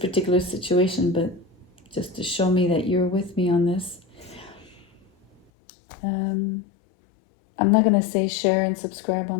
situation, but just to show me that you're with me on this. I'm not going to say share and subscribe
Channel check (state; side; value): drops out; right; at 5.4 s